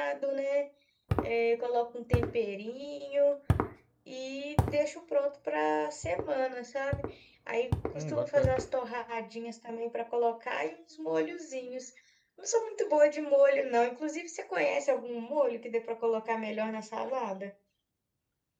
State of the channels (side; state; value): both; identical; correlation 1.00